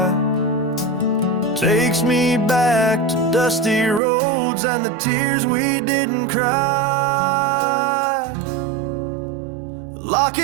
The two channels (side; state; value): left; drops out; at 4.0 s